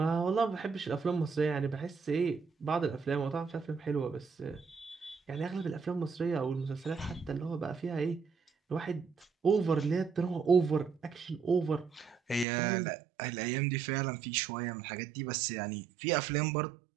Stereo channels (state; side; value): drops out; left; at 12.5 s